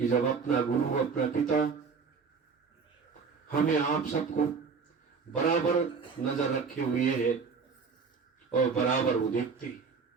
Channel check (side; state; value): left; quieter; 5.3 dB